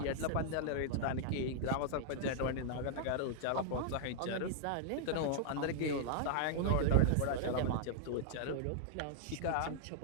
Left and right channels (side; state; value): both; different; correlation -0.01